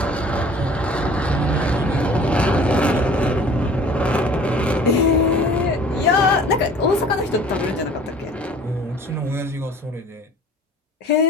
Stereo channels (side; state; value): both; normal; correlation 0.49